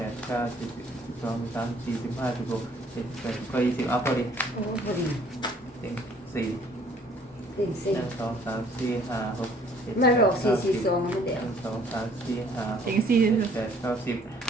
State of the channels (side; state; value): both; normal; correlation 0.59